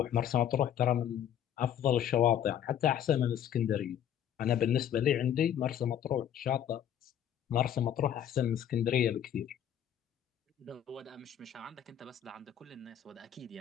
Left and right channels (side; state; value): right; quieter; 9.9 dB